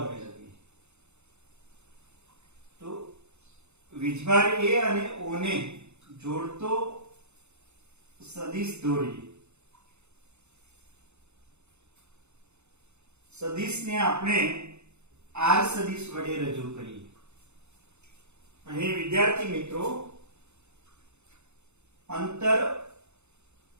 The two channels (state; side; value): late; left; 0.82 ms